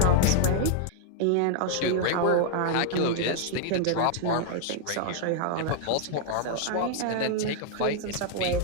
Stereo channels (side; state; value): both; different; correlation 0.00